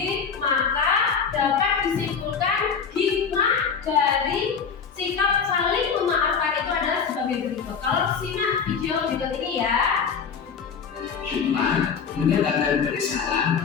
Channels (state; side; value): quieter; right; 6.3 dB